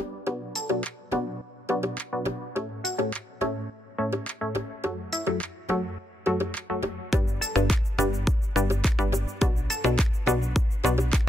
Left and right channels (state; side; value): normal; both; correlation 0.83